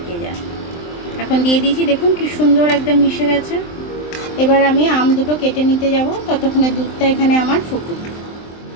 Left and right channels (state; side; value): late; right; 23 ms